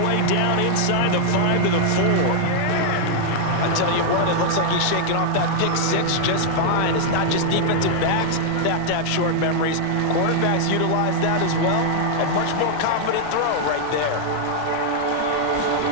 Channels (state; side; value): different; both; correlation 0.00